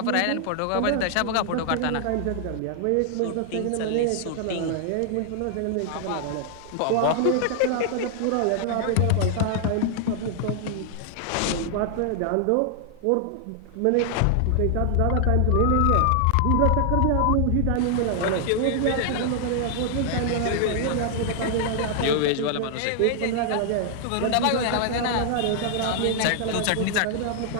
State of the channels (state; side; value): different; both; correlation 0.00